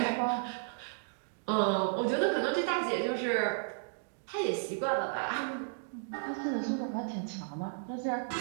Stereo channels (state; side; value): silent; left; digital silence